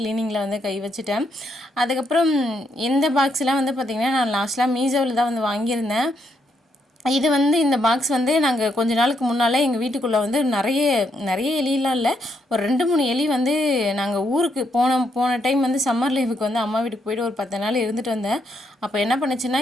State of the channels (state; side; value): normal; both; correlation 0.77